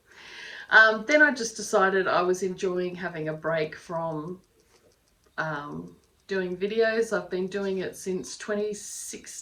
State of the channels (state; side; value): identical; both; correlation 1.00